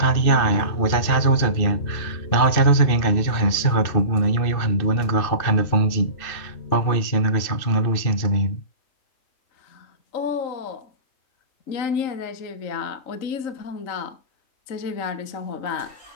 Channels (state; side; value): late; right; 2.6 ms